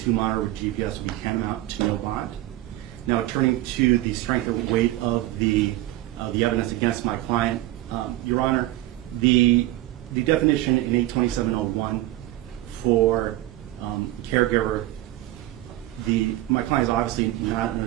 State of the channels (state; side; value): quieter; left; 16.2 dB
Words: monitor with GPS would tantamount to no bond. Now, turning to the strength or weight of the evidence against my client, Your Honor, the definition in 827.01 for caregiver, my client is obviously not an